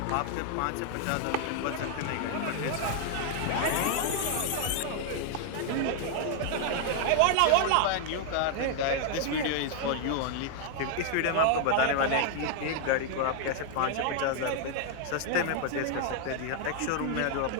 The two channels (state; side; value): different; both; correlation 0.00